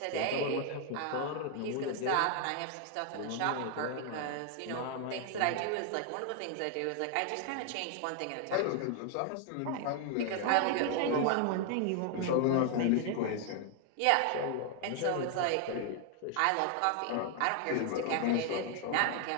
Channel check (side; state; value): both; different; correlation 0.00